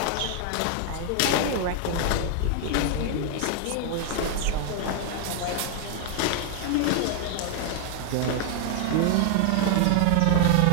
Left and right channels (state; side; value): different; both; correlation 0.01